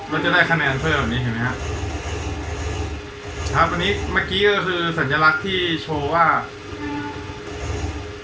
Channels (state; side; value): identical; both; correlation 1.00